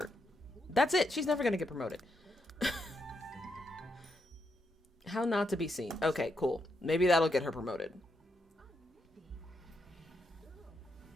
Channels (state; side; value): normal; both; correlation 0.81